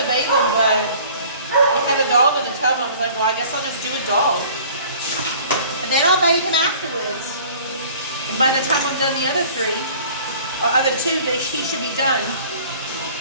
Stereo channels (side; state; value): both; inverted; correlation -0.49